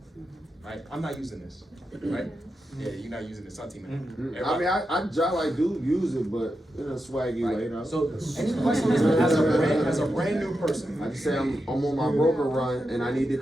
right? I'm not using this, right? Yeah, you're not using this, Santi, man. I mean, I do use it, but in a swaggy way, you know? So, any questions as a brand new person? I just say I'm on my broker run and I need to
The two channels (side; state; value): both; normal; correlation 0.88